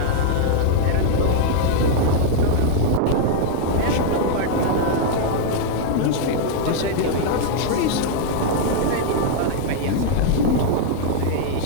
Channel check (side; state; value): both; different; correlation -0.01